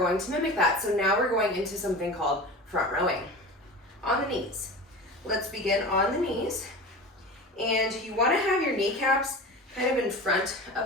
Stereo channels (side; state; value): both; normal; correlation 0.32